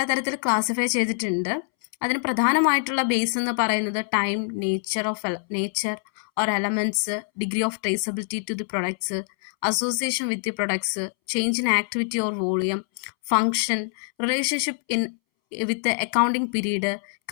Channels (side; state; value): right; silent; 62 dB below the other